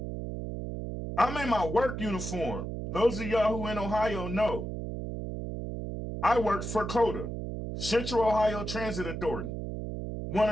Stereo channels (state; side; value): noise; right; hum, 5 dB below the sound